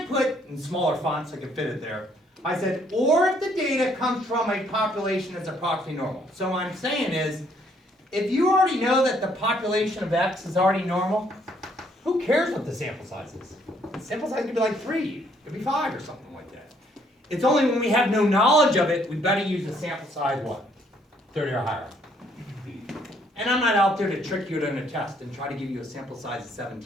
put, in smaller fonts so I could fit it there, I said, or if the data comes from a population that's approximately normal. So what I'm saying is, if you already know that the population of X is already normal, who cares what the sample size is? The sample size could be like 3, it could be 5 or something like that. It's only when we have no knowledge of it, we better use a sample size what? 30 or higher. And I'm not out there to trick you in a test and try to give you a sample size of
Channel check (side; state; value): both; normal; correlation 0.67